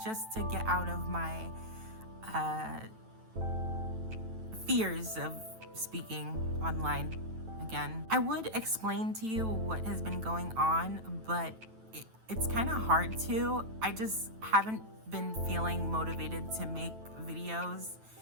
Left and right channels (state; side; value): late; left; 9.1 ms